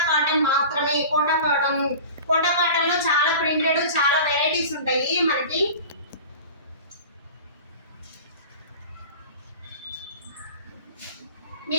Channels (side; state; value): both; inverted; correlation -0.36